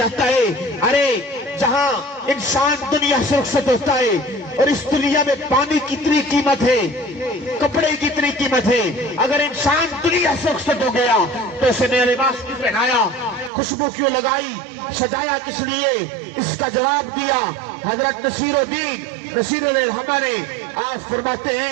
ہے۔ ارے جہاں انسان دنیا سے رخصت ہوتا ہے اور اس دنیا میں پانی کی اتنی قیمت ہے، کپڑے کی اتنی قیمت ہے، اگر انسان دنیا سے رخصت ہو گیا تو اسے نیا لباس کیوں پہنایا، خوشبو کیوں لگائی، سجایا کس لیے؟ اس کا جواب دیا حضرت نصیر الدین ہمارے آپ فرماتے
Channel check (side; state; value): left; drops out; at 13.5 s